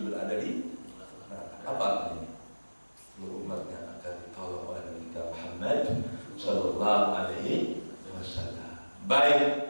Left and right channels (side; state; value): both; inverted; correlation -1.00